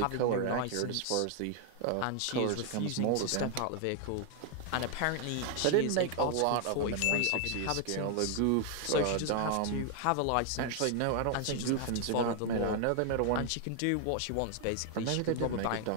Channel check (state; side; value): different; both; correlation 0.00